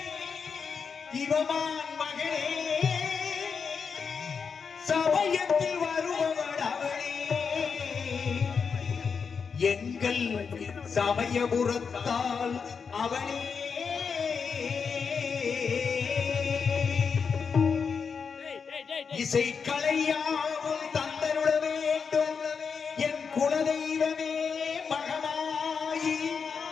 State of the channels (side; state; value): right; quieter; 5.9 dB